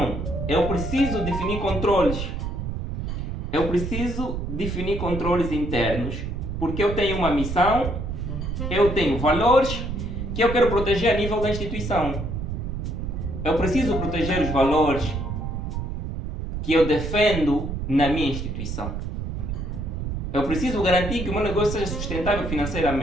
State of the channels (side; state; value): right; noise; rumble, 4 dB below the sound